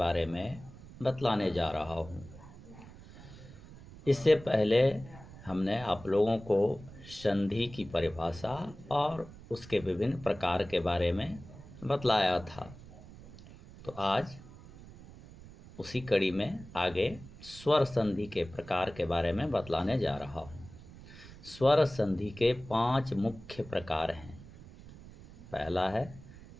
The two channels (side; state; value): right; noise; rumble, 18 dB below the sound